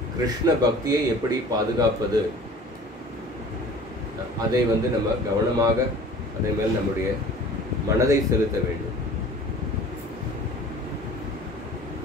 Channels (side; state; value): both; normal; correlation 0.45